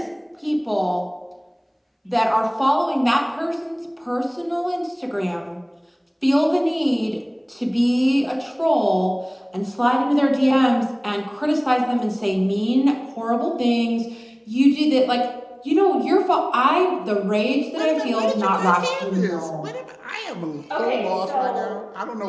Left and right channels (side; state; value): both; identical; correlation 1.00